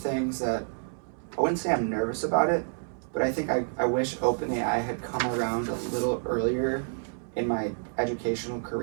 that I wouldn't say I'm nervous about it, but I think I wish OpenAI had come around a little earlier in my educational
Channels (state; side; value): silent; left; digital silence